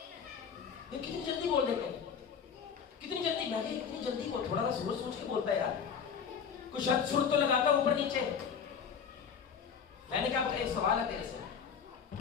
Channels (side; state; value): right; quieter; 6.9 dB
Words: یہ کتنی جلدی بول دیتے ہیں, کتنی جلدی. میں کہ کتنی جلدی بول, تھوڑا سا سوچ کے بولتا ہے یار, کچھ شرط سر تو لگاتا اوپر نیچے. میں نے کہا ایک سوال ہے تیرے سے,